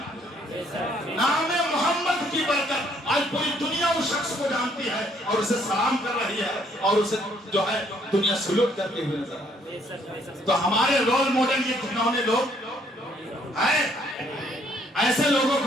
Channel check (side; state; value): both; normal; correlation 0.66